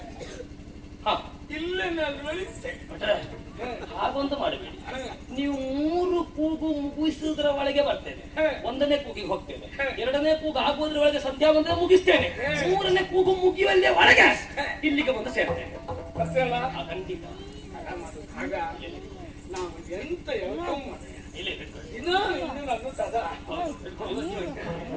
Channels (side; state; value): both; identical; correlation 1.00